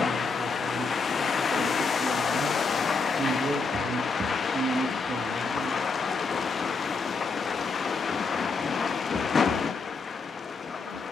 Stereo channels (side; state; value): right; quieter; 4.3 dB